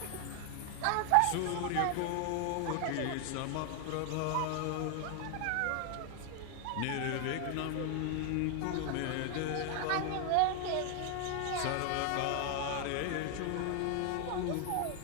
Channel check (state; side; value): different; both; correlation 0.00